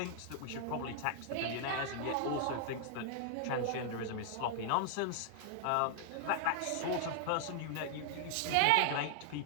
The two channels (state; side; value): different; both; correlation 0.00